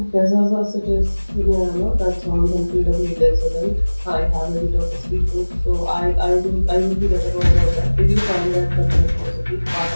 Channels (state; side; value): inverted; both; correlation -1.00